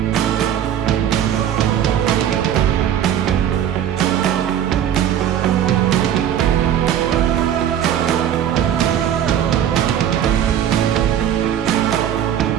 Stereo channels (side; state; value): left; quieter; 10.0 dB